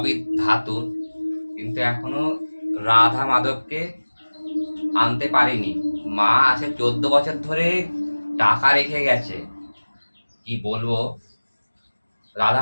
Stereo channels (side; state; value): both; inverted; correlation -1.00